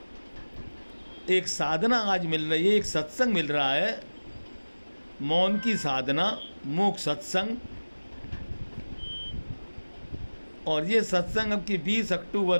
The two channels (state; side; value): inverted; both; correlation -1.00